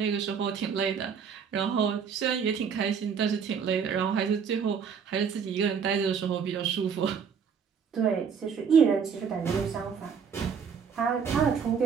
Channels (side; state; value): left; quieter; 6.7 dB